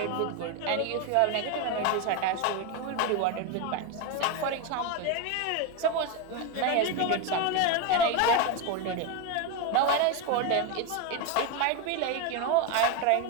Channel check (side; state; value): both; different; correlation 0.02